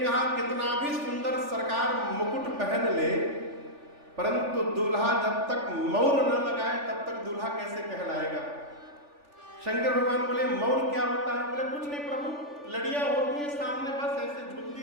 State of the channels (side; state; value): left; late; 3.4 ms